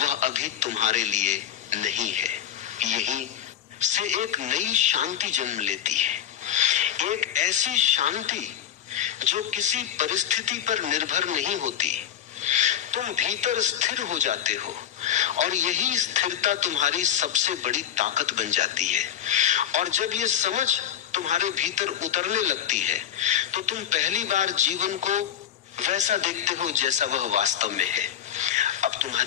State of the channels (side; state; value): right; quieter; 10.2 dB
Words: वह अभी तुम्हारे लिए नहीं है। यहीं से एक नई शांति जन्म लेती है, एक ऐसी शांति जो किसी परिस्थिति पर निर्भर नहीं होती। तुम भीतर स्थिर हो जाते हो, और यही स्थिरता तुम्हारी सबसे बड़ी ताकत बन जाती है। और जब ये समझ तुम्हारे भीतर उतरने लगती है तो तुम पहली बार जीवन को वैसा देखते हो जैसा वह वास्तव में है। अब